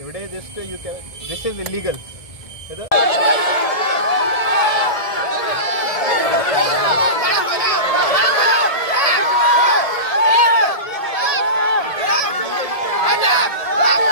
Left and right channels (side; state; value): right; late; 1.7 ms